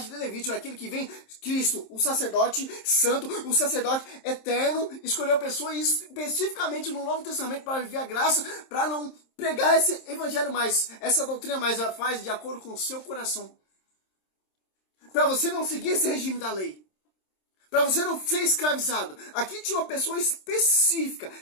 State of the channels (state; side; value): late; right; 26 ms